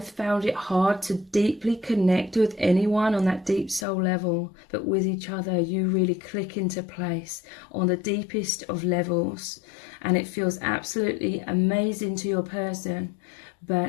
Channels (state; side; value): drops out; right; at 3.9 s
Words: found it hard to deeply connect with anyone on that deep soul level, but with each other you really click into place on the deepest of levels, and it feels absolutely amazing to your person.